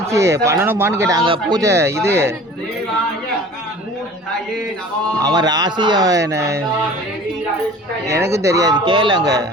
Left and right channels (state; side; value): normal; both; correlation 0.44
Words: பண்ணணுமான்னு கேட்டாங்க பூஜை இது அவன் ராசி எனக்கும் தெரியாது கேளுங்க